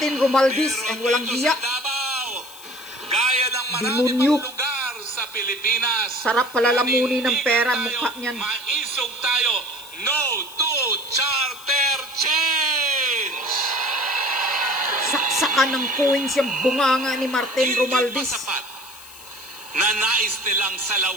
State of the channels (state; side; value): noise; left; hiss, 19 dB below the sound